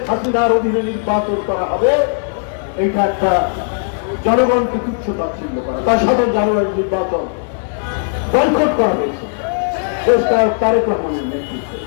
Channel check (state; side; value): silent; right; digital silence